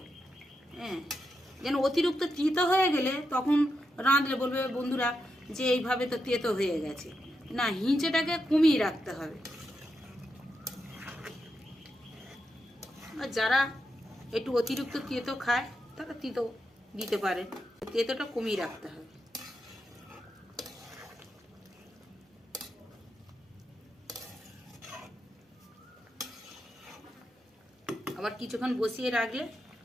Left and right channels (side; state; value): both; normal; correlation 0.85